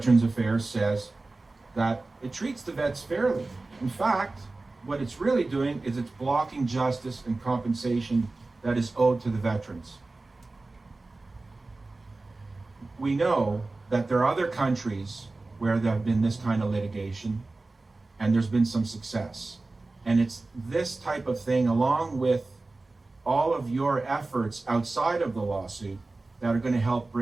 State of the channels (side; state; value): left; quieter; 3.3 dB